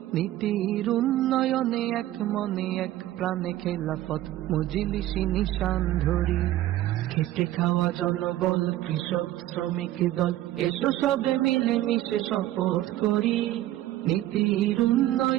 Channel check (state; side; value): quieter; left; 14.5 dB